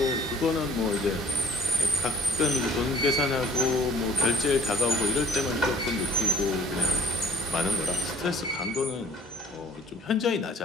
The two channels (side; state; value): both; normal; correlation 0.54